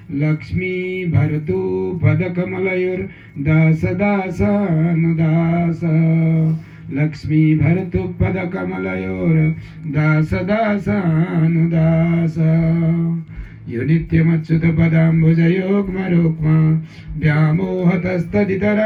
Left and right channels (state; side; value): identical; both; correlation 1.00